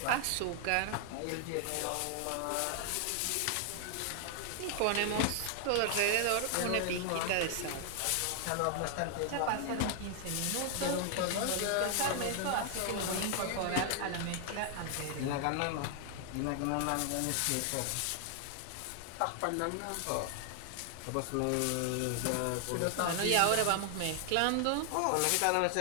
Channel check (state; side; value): different; both; correlation 0.00